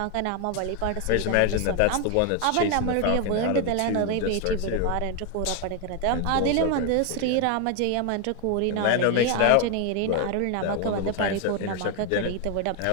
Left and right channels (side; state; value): both; different; correlation 0.01